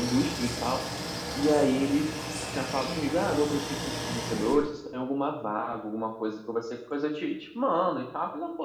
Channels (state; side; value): identical; both; correlation 1.00